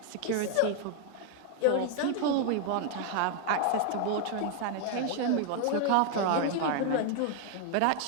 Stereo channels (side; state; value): both; different; correlation 0.00